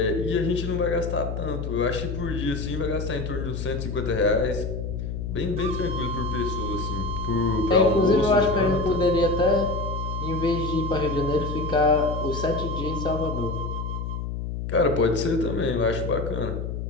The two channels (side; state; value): left; noise; hum, 4 dB below the sound